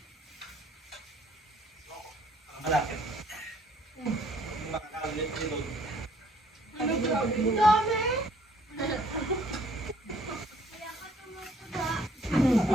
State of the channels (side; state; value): both; normal; correlation 0.61